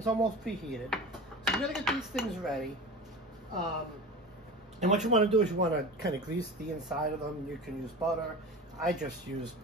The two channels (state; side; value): normal; both; correlation 0.32